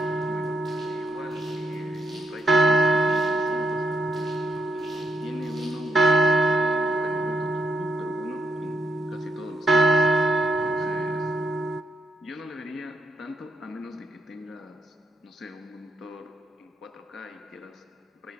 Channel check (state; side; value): normal; both; correlation 0.77